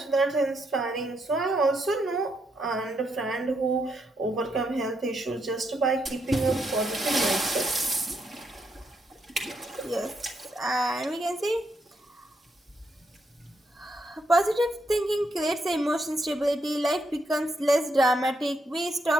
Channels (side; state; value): both; normal; correlation 0.79